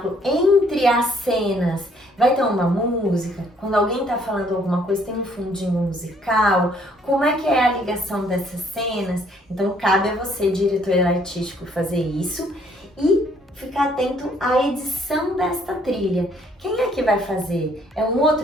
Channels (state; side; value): normal; both; correlation 0.65